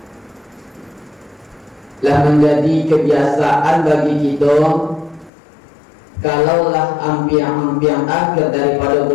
lah menjadi kebiasaan bagi kita kalaulah ampiang-ampiang akhir daripada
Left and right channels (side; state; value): right; drops out; at 5.3 s